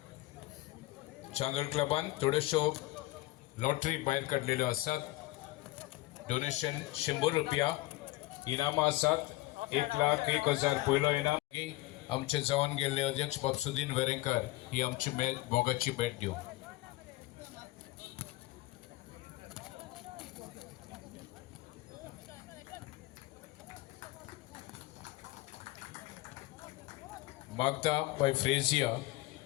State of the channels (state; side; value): quieter; right; 19.1 dB